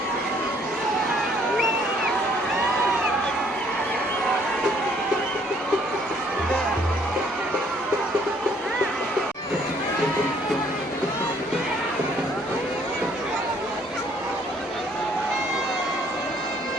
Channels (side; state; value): both; normal; correlation 0.63